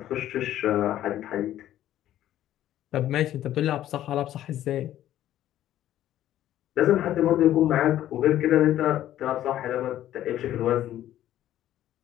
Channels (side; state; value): right; quieter; 12.6 dB